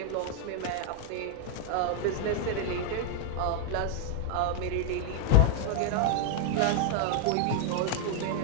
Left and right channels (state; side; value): different; both; correlation 0.00